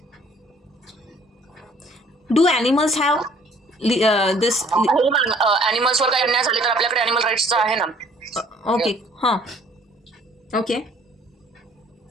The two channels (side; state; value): both; normal; correlation 0.57